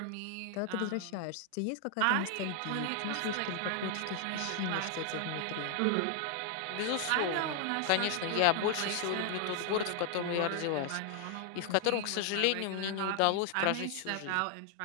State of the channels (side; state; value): both; different; correlation 0.00